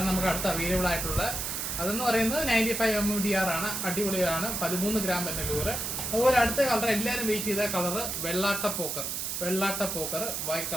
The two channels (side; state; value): right; noise; hiss, 3 dB below the sound